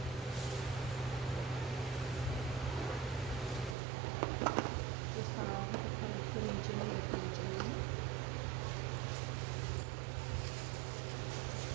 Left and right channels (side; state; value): left; drops out; at 3.8 s